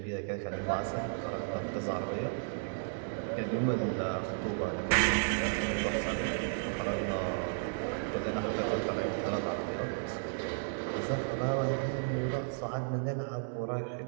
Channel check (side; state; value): left; silent; digital silence